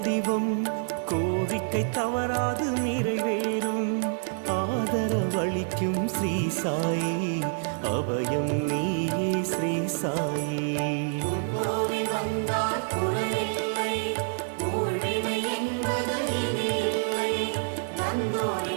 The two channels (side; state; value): left; silent; digital silence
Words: கோரிக்கை தவறாது நிறைவேறும் ஆதரவு உணவளிக்கும் ஸ்ரீ சாயி, அபயம் நீயே ஸ்ரீ சாயி. கோவில் வந்தால் குறையில்லை, ஊழ்வினை என்பது இனி இல்லை.